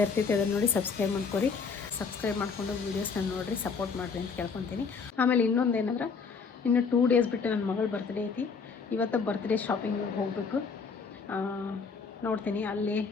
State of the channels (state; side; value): quieter; right; 5.2 dB